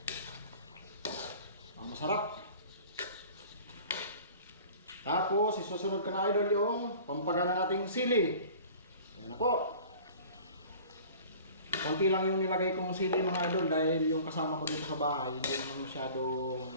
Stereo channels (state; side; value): inverted; both; correlation -0.45